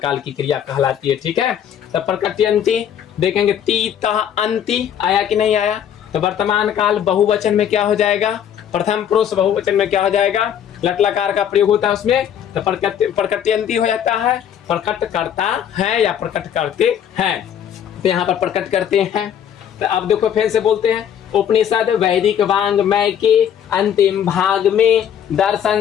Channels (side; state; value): right; quieter; 9.3 dB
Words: की क्रिया कहलाती है, ठीक है। तो प्रकटयन्ति देखेंगे, ती तह अंति आया कि नहीं आया, तो वर्तमान काल बहुवचन में क्या हो जाएगा, प्रथम पुरुष बहुवचन में क्या हो जाएगा, लट लकार का प्रयोग होता है उसमें, तो प्रकटयन्ति हो जाता है, प्रकट करता है या प्रकट करते हैं। तो यहाँ पर प्रकट करते हैं। तो अब देखो फिर से बोलते हैं, उपनिषद वैदिक वांग्मय के अंतिम भाग में